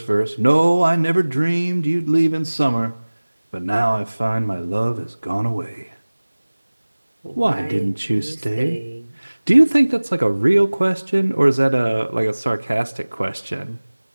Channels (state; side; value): inverted; both; correlation -1.00